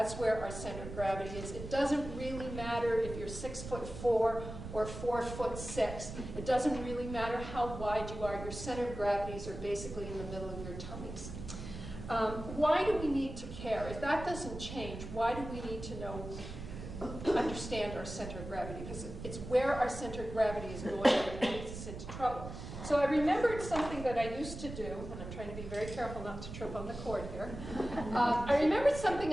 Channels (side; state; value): right; noise; rumble, 9 dB below the sound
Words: where our center of gravity is. It doesn't really matter if you're 6'4" or 4'6". It doesn't really matter how wide you are. Your center of gravities are basically in the middle of your tummies. Why do we need to care? If that doesn't change, why do we need to understand our center of gravity? Because it's where our center of gravity is going that leads us into trouble. So I remembered something that I used to do, and I'm trying to be very careful not to trip on the cord here. I remembered something